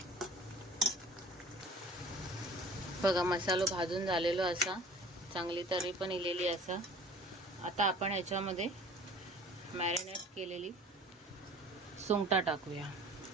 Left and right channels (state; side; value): normal; both; correlation 0.46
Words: बघा, मसालो भाजून झालेलो असा, चांगली तरी पण इलेली असा. आता आपण ह्याच्यामध्ये मॅरिनेट केलेली सुंगटा टाकूया,